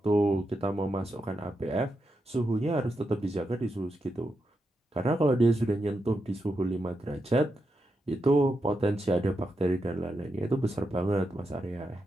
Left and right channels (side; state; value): both; normal; correlation 0.86